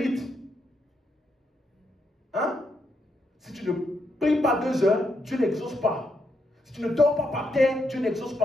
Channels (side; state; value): both; normal; correlation 0.80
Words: Hein? Si tu ne pries pas 2 heures, Dieu n'exauce pas. Si tu ne dors pas par terre, Dieu n'exauce